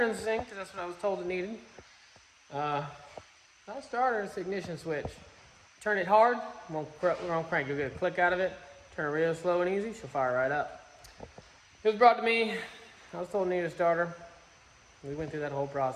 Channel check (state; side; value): identical; both; correlation 1.00